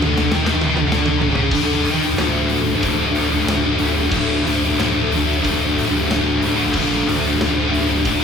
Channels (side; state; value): both; normal; correlation 0.62